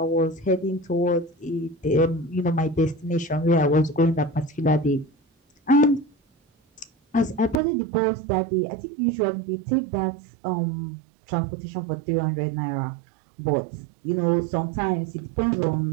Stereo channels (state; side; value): drops out; left; at 7.6 s